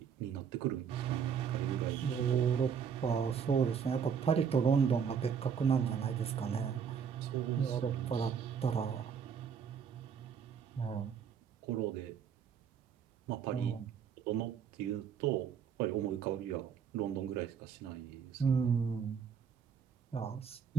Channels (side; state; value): left; quieter; 7.2 dB